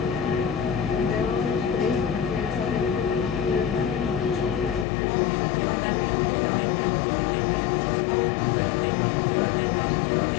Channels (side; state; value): right; drops out; at 4.9 s